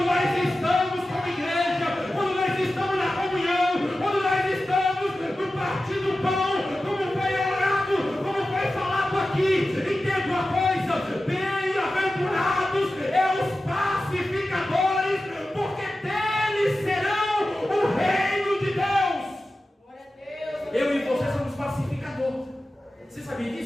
nós estamos como igreja, quando nós estamos na comunhão, quando nós estamos no partir do pão, como foi orado, como foi falado aqui, entenda uma coisa: bem-aventurados os pacificadores, porque deles serão o reino de Deus. Eu e você somos pacificadores. Você sabia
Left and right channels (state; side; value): normal; both; correlation 0.94